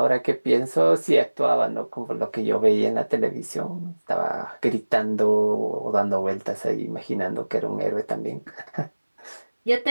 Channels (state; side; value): inverted; both; correlation -1.00